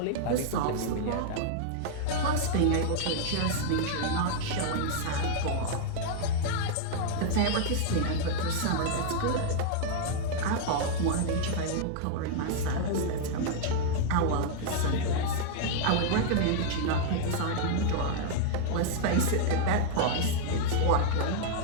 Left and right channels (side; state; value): both; different; correlation -0.01